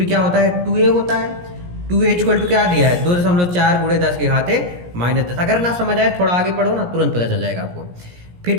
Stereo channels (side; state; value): left; late; 17 ms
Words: क्या होता है 2a होता है। 2a इक्वल टू क्या दिया है 2.4 गुणे 10⁻⁻10। अगर ना समझ आए थोड़ा आगे पढ़ो ना, तुरंत पता चल जाएगा आपको। फिर